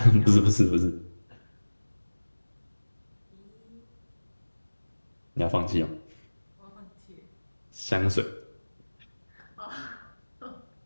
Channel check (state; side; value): inverted; both; correlation -1.00